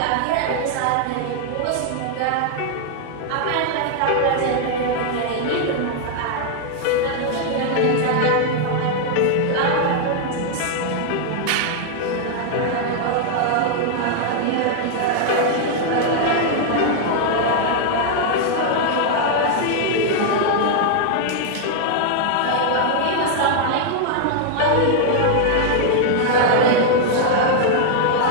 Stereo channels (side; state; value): both; different; correlation 0.00